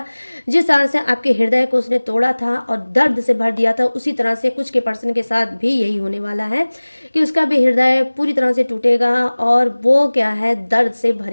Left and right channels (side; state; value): both; inverted; correlation -1.00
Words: जिस तरह से आपके हृदय को उसने तोड़ा था और दर्द से भर दिया था, उसी तरह से कुछ के पर्सन के साथ भी यही होने वाला है कि उसका भी हृदय पूरी तरह से टूटेगा और वो क्या है, दर्द से